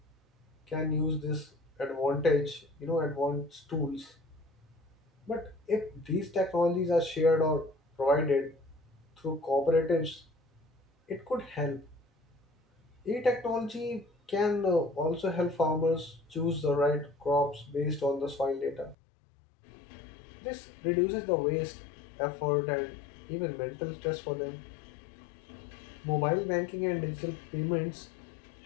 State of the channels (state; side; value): drops out; right; at 18.9 s